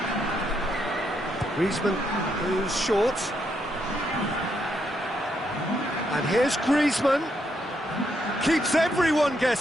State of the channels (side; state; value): both; normal; correlation 0.77